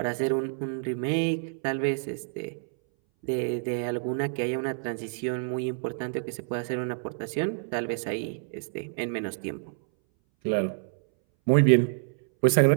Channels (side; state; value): left; silent; 59 dB below the other